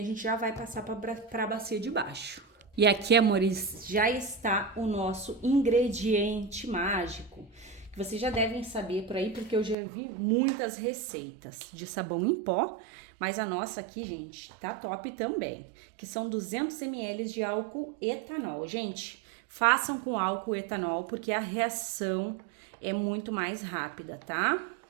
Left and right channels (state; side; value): drops out; left; at 9.8 s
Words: a gente já vai passar para a bacia de baixo. E aqui, amores, já está o nosso ingrediente mágico, que vocês já devem saber por aí, porque eu já vi muitas receitas de sabão em pó, mas a nossa aqui, gente, tá top também, que são 200 ml de álcool etanol. Gente, façam com álcool etanol, porque a reação é muito mais rápida, tá?